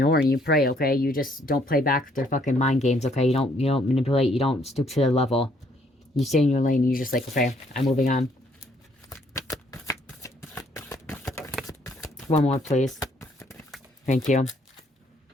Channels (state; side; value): normal; both; correlation 0.66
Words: and you pray, okay? You just don't play back their fucking mind games, okay? You don't manipulate, you don't stoop to their level. You stay in your lane and you're just like, okay, I'm moving on. One more, please. Thank you.